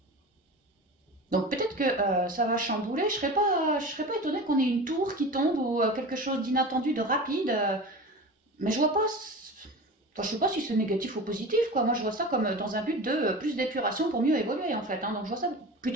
Donc peut-être que ça va chambouler, je serais pas étonnée qu'on ait une tour qui tombe ou quelque chose d'inattendu, de rapide, mais je vois pas... Enfin, je sais pas si c'est négatif ou positif, quoi. Moi, je vois ça comme dans un but de plus d'épuration pour mieux évoluer, en fait. Hein. Donc, je vois ça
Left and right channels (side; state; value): both; normal; correlation 0.32